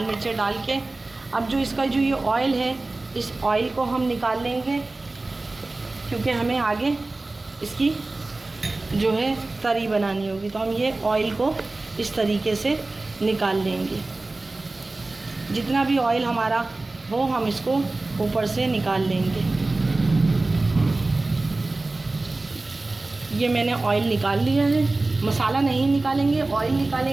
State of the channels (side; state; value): left; quieter; 3.2 dB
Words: मिर्चें डाल के। अब जो इसका जो ये ऑयल है, इस ऑयल को हम निकाल लेंगे, क्योंकि हमें आगे इसकी जो है तरी बनानी होगी, तो हम ये ऑयल को इस तरीके से निकाल लेंगे। जितना भी ऑयल हमारा हो हम इसको ऊपर से निकाल लेंगे। ये मैंने ऑयल निकाल लिया है, मसाला नहीं निकालेंगे, ऑयल